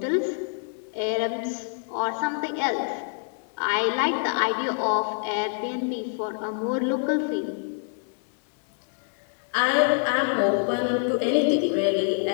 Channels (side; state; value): right; silent; digital silence